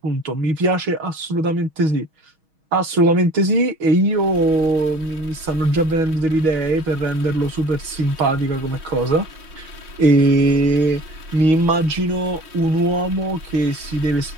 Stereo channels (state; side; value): late; left; 6.3 ms